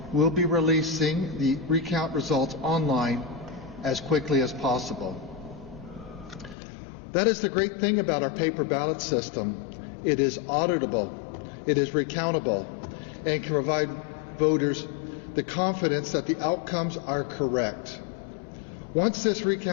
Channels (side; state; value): right; drops out; at 6.6 s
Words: will be releasing the recount results online as quickly as possible. That is the great thing about our paper ballot system. It is auditable, it is recountable, and can provide voters the confidence that the outcomes are correct. Once this